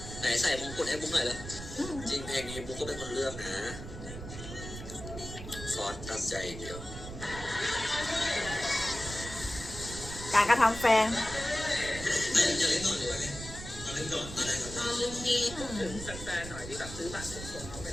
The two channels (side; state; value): right; noise; rumble, 10 dB below the sound